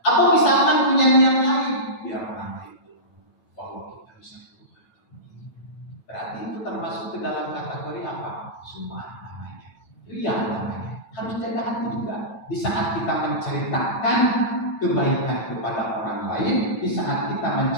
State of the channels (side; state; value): right; late; 9.1 ms